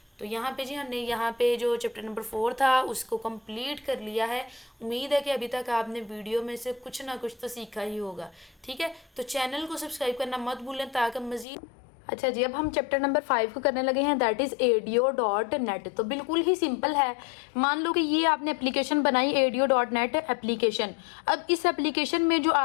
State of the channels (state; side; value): drops out; right; at 11.5 s